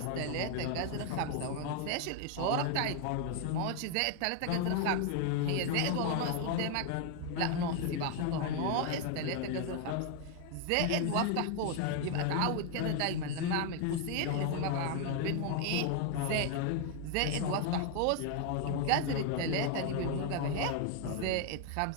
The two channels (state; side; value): different; both; correlation 0.01